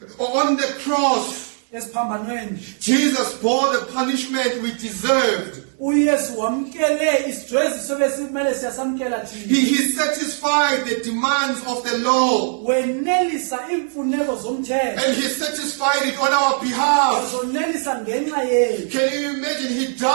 On the cross, esiphambanweni? Jesus bore the punishment we deserved. uYesu wamkele isidweziso besimele siyasamkela thina. He satisfied the demands of the law, Wenelisa imfuneko zomthetho. and he satisfied it on our behalf. Zonelisa ngenxa yethu. Can you imagine? He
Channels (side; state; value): left; silent; 57 dB below the other